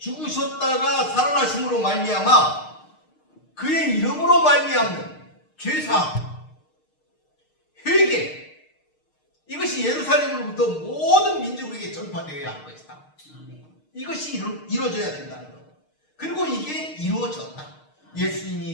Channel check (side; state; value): right; late; 6.5 ms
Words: 살아나심으로 말미암아 그의 이름으로 말미암는 죄사함, 회개, 이것이 예루살렘으로부터 모든 민족에게 전파되어야 할 것이다. 아멘. 이것이 이루어져야 된다는 것. 그리고 이게 이루어졌다.